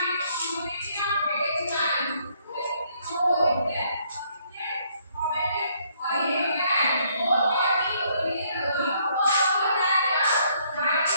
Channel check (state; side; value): inverted; both; correlation -0.68